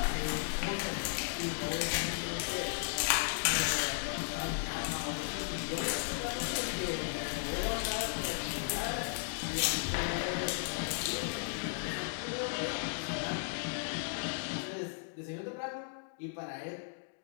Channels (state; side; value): silent; right; digital silence